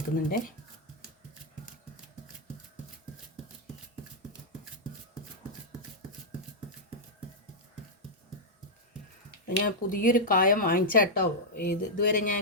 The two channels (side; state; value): both; normal; correlation -0.06